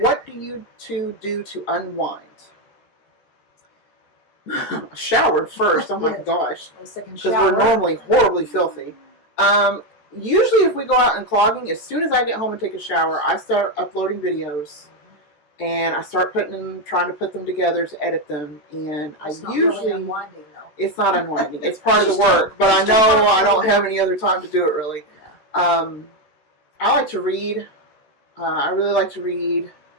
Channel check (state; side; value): late; right; 14 ms